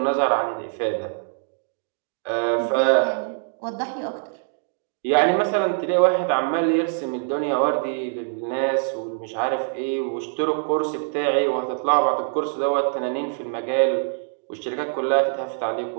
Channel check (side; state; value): left; silent; digital silence